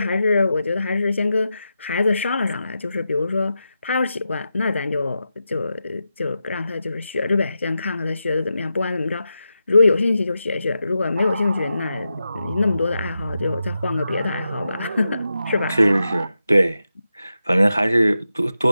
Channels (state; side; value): inverted; both; correlation -0.89